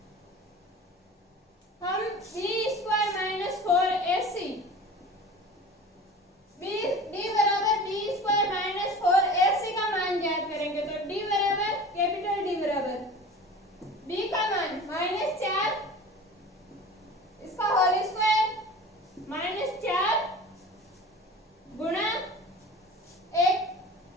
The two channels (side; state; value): both; normal; correlation 0.38